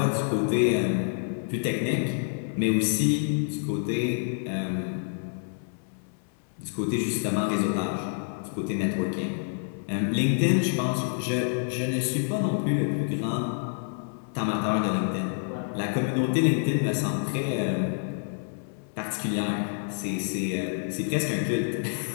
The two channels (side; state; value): right; silent; 58 dB below the other